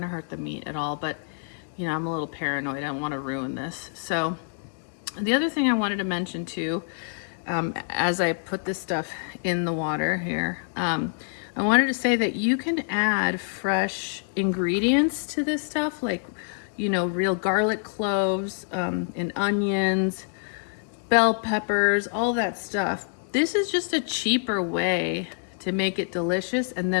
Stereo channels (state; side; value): silent; right; digital silence